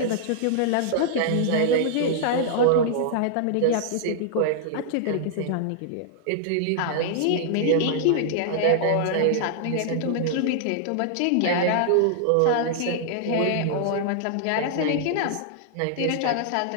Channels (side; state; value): both; different; correlation -0.01